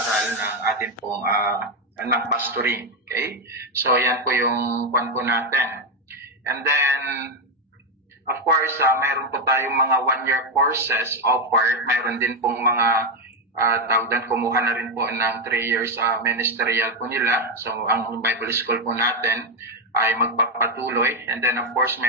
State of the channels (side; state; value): both; normal; correlation 0.06